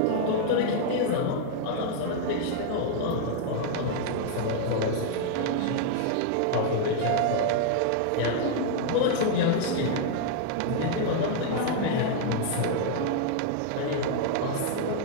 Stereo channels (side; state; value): both; different; correlation 0.00